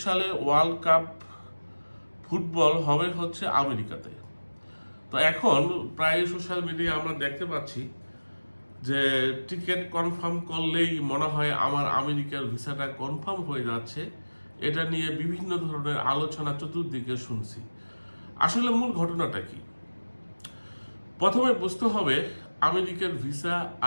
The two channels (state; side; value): inverted; both; correlation -1.00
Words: সালে ওয়ার্ল্ড কাপ ফুটবল হবে হচ্ছে আমেরিকাতে। তো এখন প্রায় সোশ্যাল মিডিয়ায় আমরা দেখতে পাচ্ছি যে টিকিট কনফার্ম করলেই মনে হয় আমার আমেরিকার ভিসাটা কনফার্ম হয়ে যাচ্ছে। এটা নিয়ে বিভিন্ন ধরনের আলোচনা চতুর্দিকে শুনছি। আসলে মূল ঘটনাটা কি? প্রথমে বুঝতে হবে আমেরিকার ভিসা